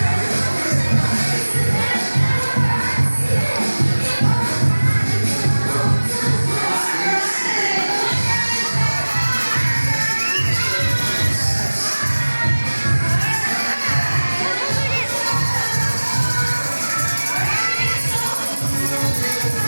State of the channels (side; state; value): both; inverted; correlation -1.00